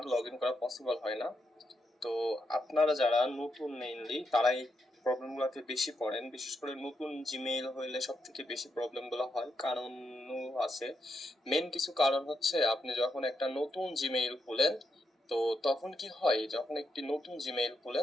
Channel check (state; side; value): normal; both; correlation 0.82